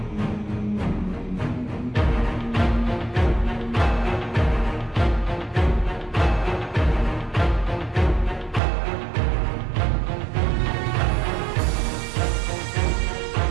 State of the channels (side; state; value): left; drops out; at 8.6 s